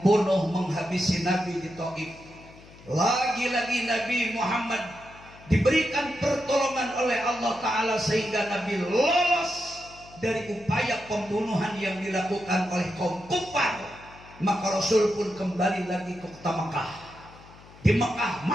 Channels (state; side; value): noise; left; hum, 22 dB below the sound